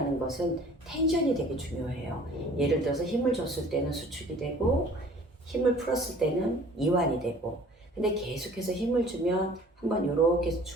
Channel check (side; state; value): both; normal; correlation 0.50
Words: 것은 텐션이 되게 중요해요. 예를 들어서 힘을 줬을 때는 수축이 되고 힘을 풀었을 때는 이완이 되고, 근데 계속해서 힘을 주면 한번 이렇게